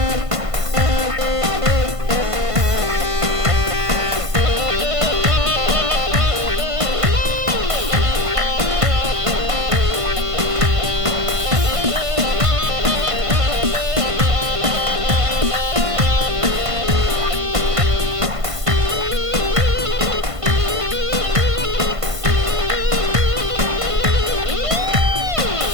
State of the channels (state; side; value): late; left; 1.5 ms